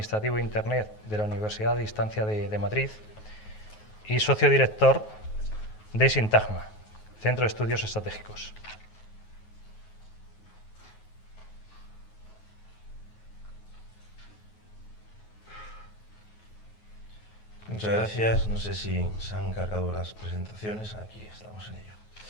e Internet de la Universidad de Distancia de Madrid y socio director de Sintagma, Centro de Estudios Estratégicos. Muchas gracias. No sé si se han cargado las presentaciones. Aquí estamos en ello.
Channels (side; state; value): right; late; 9.4 ms